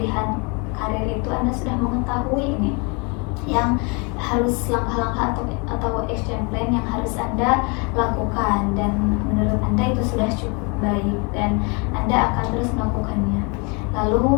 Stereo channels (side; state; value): right; quieter; 32.3 dB